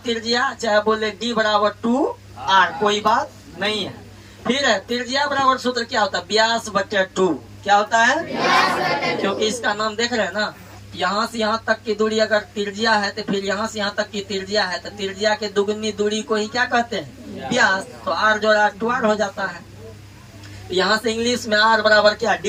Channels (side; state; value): both; identical; correlation 1.00